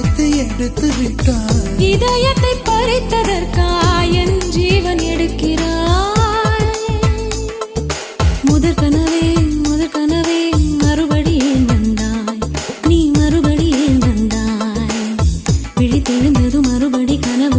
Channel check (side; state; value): both; identical; correlation 1.00